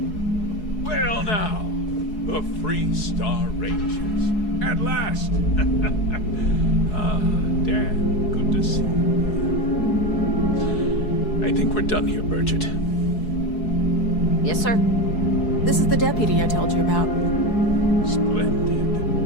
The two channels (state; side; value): late; right; 4.7 ms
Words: Well now, the Freestar Rangers. At last! Dan, good to see you. I think we're done here, Burgett. Yes, sir. This is the deputy I told you about. Splendid.